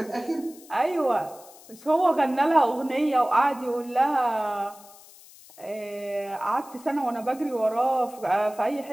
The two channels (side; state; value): left; noise; hiss, 22 dB below the sound